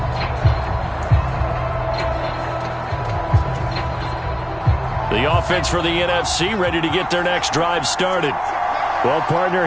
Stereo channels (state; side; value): identical; both; correlation 1.00